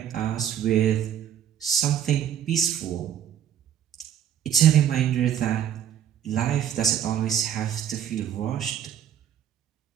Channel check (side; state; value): left; quieter; 9.6 dB